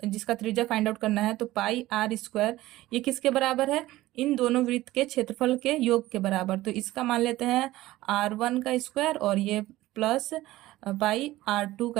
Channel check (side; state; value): left; quieter; 16.8 dB